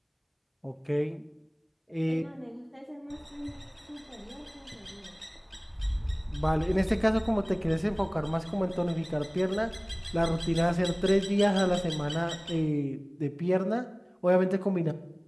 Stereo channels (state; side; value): identical; both; correlation 1.00